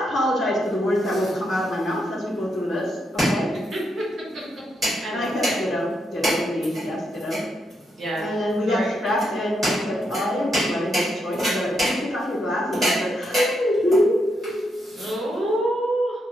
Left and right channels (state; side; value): normal; both; correlation 0.81